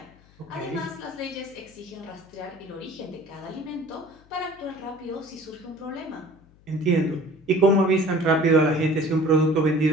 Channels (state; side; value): noise; left; hum, 28 dB below the sound